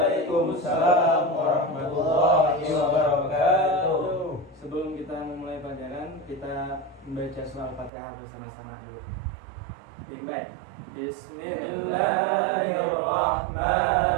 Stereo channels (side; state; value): left; drops out; at 7.9 s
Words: warahmatullahi wabarakatuh. Sebelum kita memulai pelajaran, kita membaca surah Al-Fatihah bersama-sama dulu. Baik.